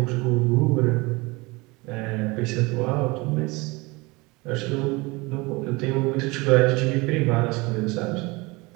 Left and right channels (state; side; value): quieter; left; 24.5 dB